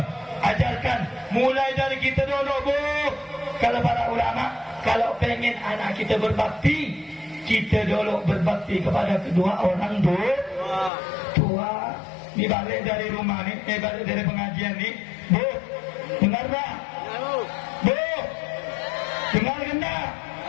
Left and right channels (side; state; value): right; drops out; at 10.9 s